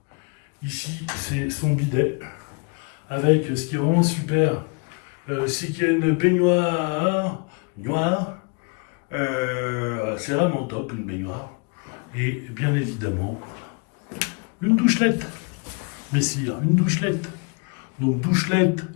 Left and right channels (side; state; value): right; quieter; 34.0 dB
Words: Ici, c'est son bidet. Avec ce qui est vraiment super, c'est qu'il y a une baignoire noire. C'est vraiment top, une baignoire. Et bien évidemment, une douchelette. Messire, une douchelette. Donc douchelette